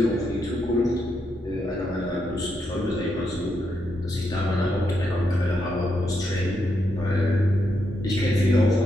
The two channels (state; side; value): normal; both; correlation 0.81